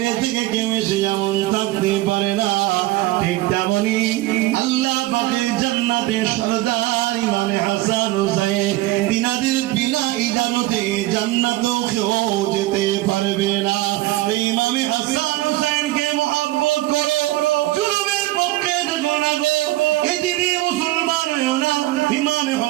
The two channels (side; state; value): left; quieter; 17.2 dB